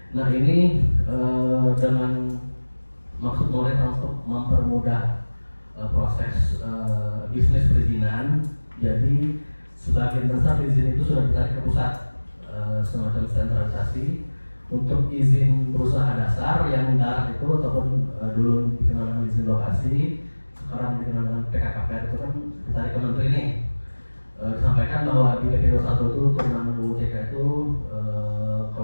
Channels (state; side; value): inverted; both; correlation -1.00